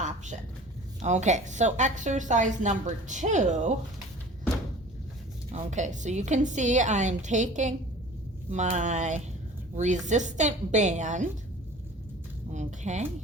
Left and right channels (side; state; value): both; normal; correlation 0.44